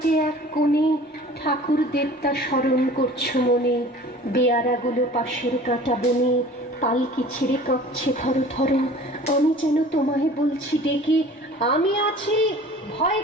এক কোণে, ঠাকুর দেবতা স্মরণ করছো মনে। বেয়ারাগুলো পাশের কাটা বনে, পালকি ছেড়ে কাঁপছে থরো থরো। আমি যেন তোমায় বলছি ডেকে, আমি আছি, ভয়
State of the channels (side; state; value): both; normal; correlation 0.45